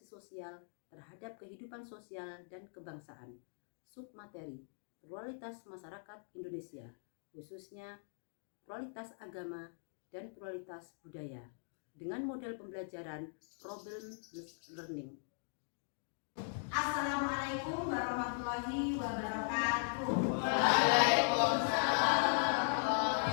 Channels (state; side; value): silent; right; digital silence